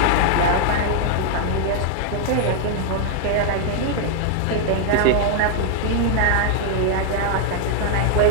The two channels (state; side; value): different; both; correlation 0.00